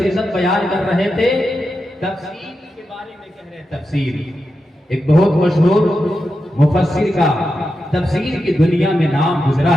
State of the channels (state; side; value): normal; both; correlation 0.89